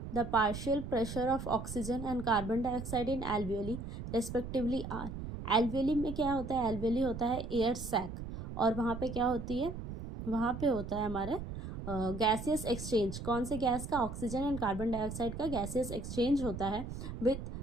the partial pressure of oxygen and carbon dioxide in alveoli respectively are. Alveoli में क्या होता है, एल्वियोली होता है एयर सैक, और वहाँ पे क्या होती है, वहाँ पे होता है हमारे गैसियस एक्सचेंज। कौन से गैस का, ऑक्सीजन एंड कार्बन डाइऑक्साइड का गैसियस एक्सचेंज होता है विथ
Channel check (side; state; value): right; noise; rumble, 8 dB below the sound